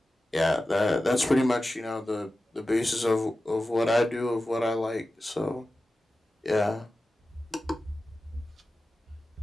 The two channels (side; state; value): both; normal; correlation 0.94